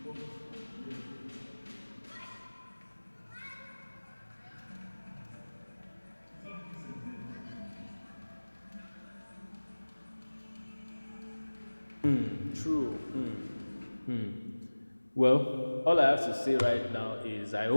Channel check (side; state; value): both; inverted; correlation -1.00